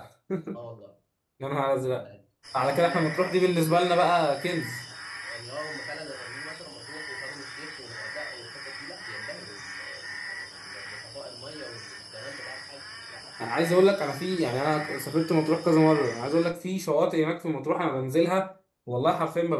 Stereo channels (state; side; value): identical; both; correlation 1.00